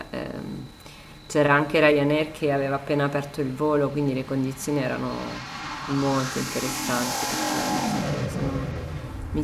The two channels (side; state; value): both; identical; correlation 1.00